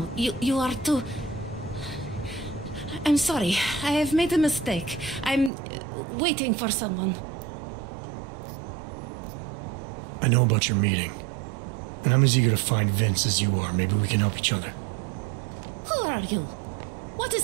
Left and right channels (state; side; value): drops out; left; at 5.5 s